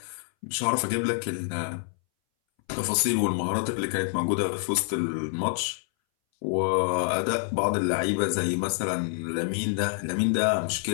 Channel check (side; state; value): right; silent; 60 dB below the other